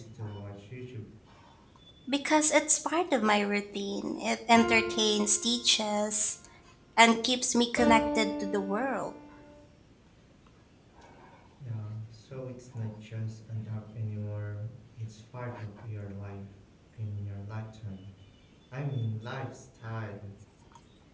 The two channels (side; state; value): both; identical; correlation 1.00